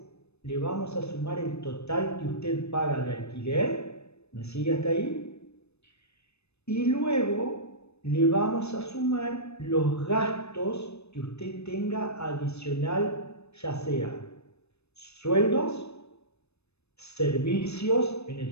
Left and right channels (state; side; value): late; right; 0.80 ms